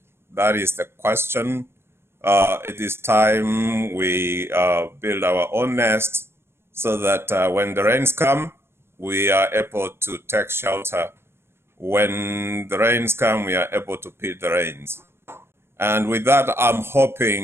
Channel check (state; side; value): late; left; 0.12 ms